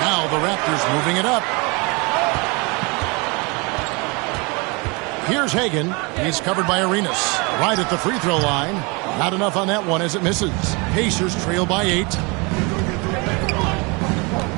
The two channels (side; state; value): left; quieter; 29.0 dB